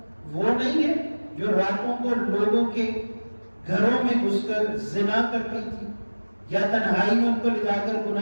وہ نہیں ہے جو راتوں کو لوگوں کے گھروں میں گھس کر زنا کرتی تھی یا تنہائی میں ان کو لے جا کر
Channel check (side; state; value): both; inverted; correlation -1.00